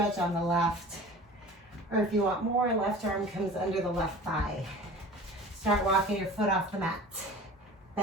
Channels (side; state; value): both; normal; correlation 0.40